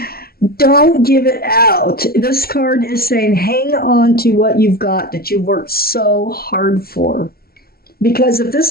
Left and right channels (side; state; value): right; late; 0.44 ms